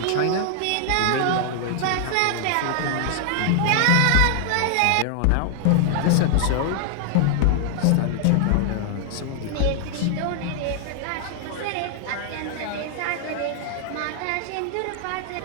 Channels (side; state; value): both; different; correlation 0.00